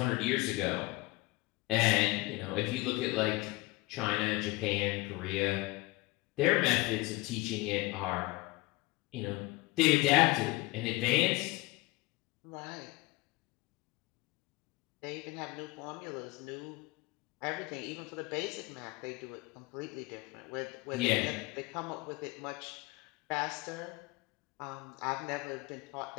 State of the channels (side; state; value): right; quieter; 22.0 dB